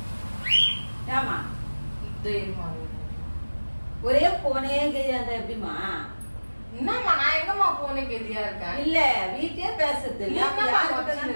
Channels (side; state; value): both; inverted; correlation -1.00